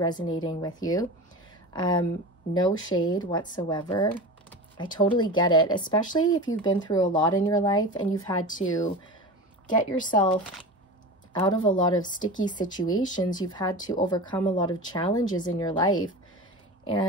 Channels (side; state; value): both; normal; correlation 0.30